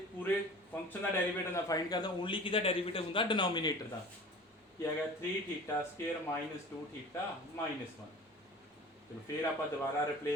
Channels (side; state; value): both; normal; correlation 0.41